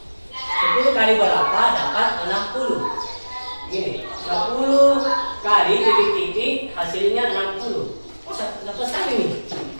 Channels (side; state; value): both; inverted; correlation -1.00